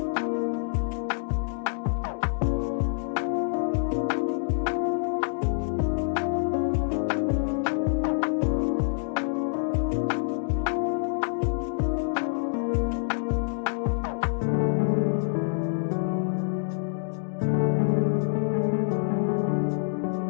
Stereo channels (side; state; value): right; silent; digital silence